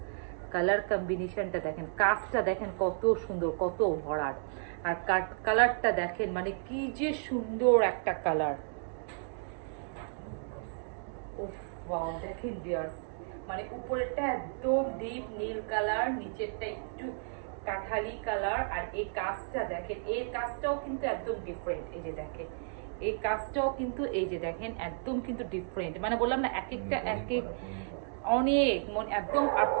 কালার কম্বিনেশনটা দেখেন, কাজটা দেখেন কত সুন্দর, কত ভরাট, আর কালারটা দেখেন মানে কি যে সুন্দর একটা কালার। ওয়াও দেখেন ভিউয়ার্স, মানে উপরেরটা একদম ডিপ নীল কালার, নিচেরটা একটু কাঠালি কালার, আর এই কাজটা দেখেন, এই কাজটাও কিন্তু একদম ডিফারেন্ট। এই যে দেখেন এই কাজটাও কিন্তু, এই যে দেখেন একদম কিন্তু ডিফারেন্ট, মানে বললাম না এক একটা এক এক অনেক একদম। আর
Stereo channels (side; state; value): left; silent; digital silence